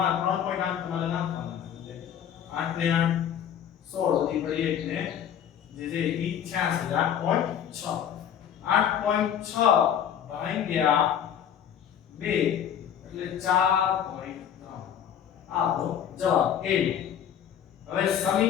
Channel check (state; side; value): quieter; right; 9.2 dB